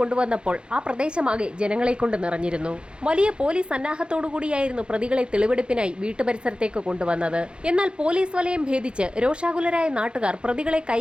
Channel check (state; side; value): late; left; 0.054 ms